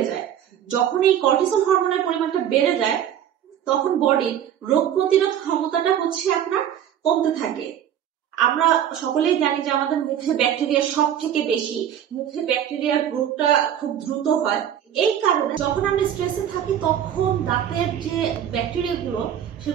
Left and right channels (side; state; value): left; quieter; 10.0 dB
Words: যায়। যখন এই কর্টিসল হরমোনের পরিমাণটা বেড়ে যায় তখন বডির রোগ প্রতিরোধ ক্ষমতাটা আপনার কমতে থাকে। আমরা সকলেই জানি যে আমাদের মুখে ব্যাকটেরিয়া সব থেকে বেশি, মুখে ব্যাকটেরিয়ার গ্রোথটা খুব দ্রুত হয়। এই কারণে যখন আমরা স্ট্রেসে থাকি তখন দাঁতের যে ব্যাকটেরিয়া গুলো